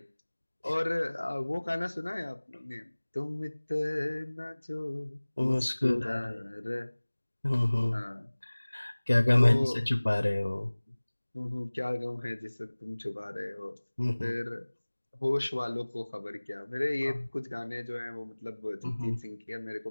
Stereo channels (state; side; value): inverted; both; correlation -1.00